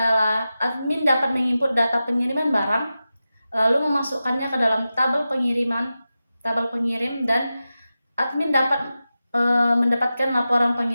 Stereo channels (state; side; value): inverted; both; correlation -0.93